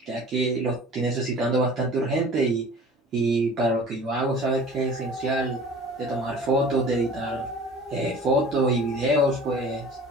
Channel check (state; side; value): normal; both; correlation 0.43